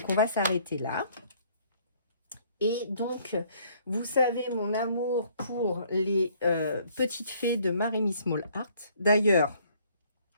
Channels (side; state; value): both; inverted; correlation -0.62